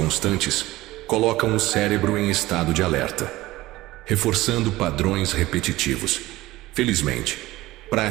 colocam o cérebro em estado de alerta, reforçando padrões repetitivos. Felizmente,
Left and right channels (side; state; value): left; quieter; 17.8 dB